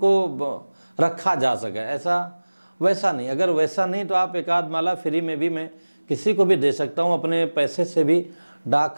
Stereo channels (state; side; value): inverted; both; correlation -1.00